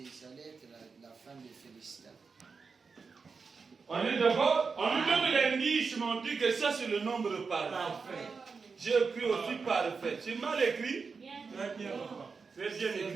allait être la femme de Philistin. On est d'accord? On nous donne l'indice, mais on dit que ça c'est le nombre parfait. J'ai écrit aussi parfait. C'est mal écrit? Très bien. Très bien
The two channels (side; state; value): left; quieter; 5.0 dB